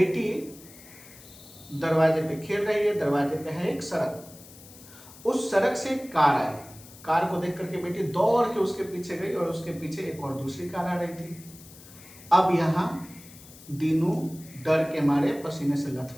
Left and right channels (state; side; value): noise; left; hiss, 20 dB below the sound